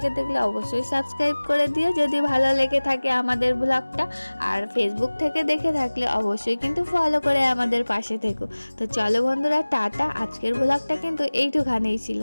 দেখলে অবশ্যই সাবস্ক্রাইব করে দিও যদি ভালো লেগে থাকে আমাদের ব্লগটা, আর ফেসবুক থেকে দেখে থাকলে অবশ্যই কিন্তু ফলো করে আমাদের পাশে থেকো। তো চলো বন্ধুরা টাটা, আজকের ব্লগটা কিন্তু এইটুখানেই ছিল,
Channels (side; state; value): both; inverted; correlation -1.00